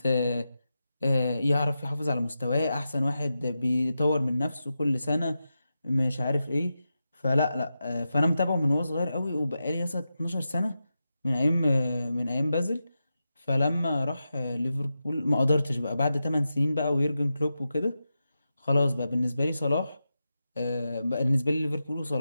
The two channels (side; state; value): both; inverted; correlation -0.90